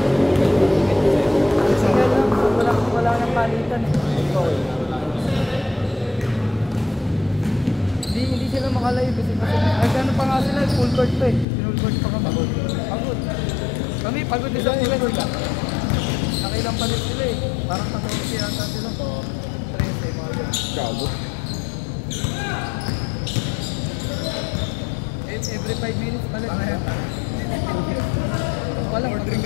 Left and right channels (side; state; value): right; drops out; at 11.5 s